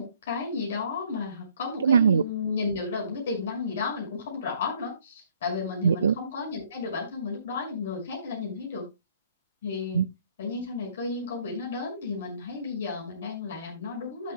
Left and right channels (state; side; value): inverted; both; correlation -0.62